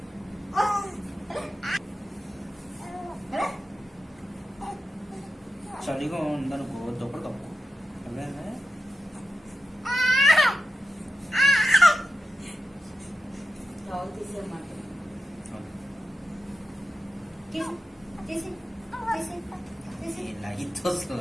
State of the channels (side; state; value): both; normal; correlation 0.92